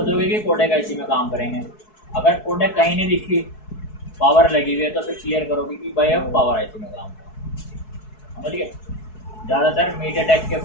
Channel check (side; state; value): right; late; 4.7 ms